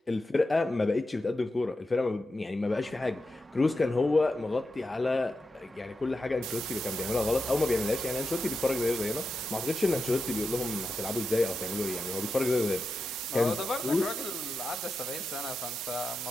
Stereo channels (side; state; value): both; normal; correlation 0.88